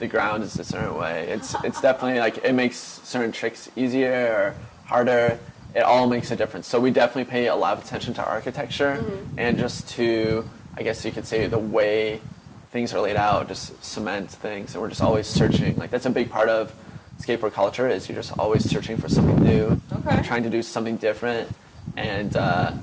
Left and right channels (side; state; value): both; identical; correlation 1.00